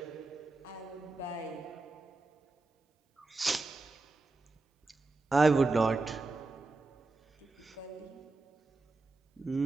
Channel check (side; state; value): left; quieter; 3.5 dB